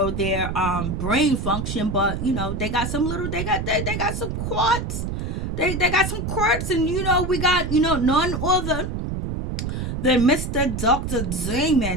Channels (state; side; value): noise; right; rumble, 3 dB below the sound